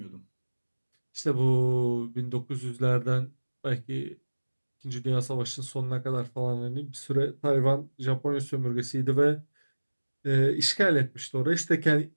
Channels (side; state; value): both; inverted; correlation -1.00